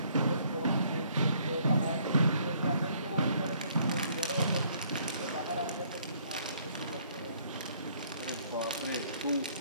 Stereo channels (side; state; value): both; inverted; correlation -0.64